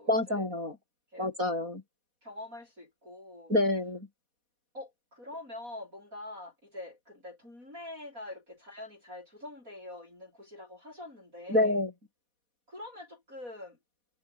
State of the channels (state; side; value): late; left; 4.1 ms